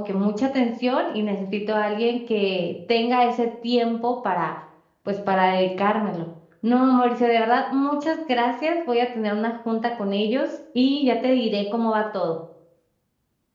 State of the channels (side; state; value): both; identical; correlation 1.00